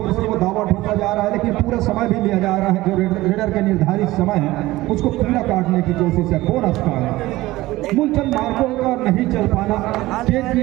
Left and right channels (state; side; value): quieter; left; 18.0 dB